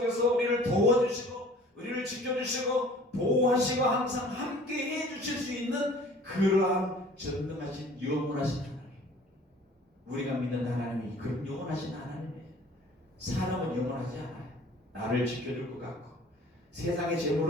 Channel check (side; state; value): both; normal; correlation 0.49